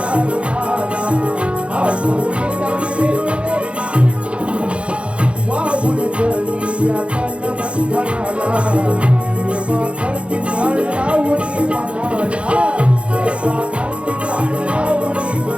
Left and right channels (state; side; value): late; left; 0.060 ms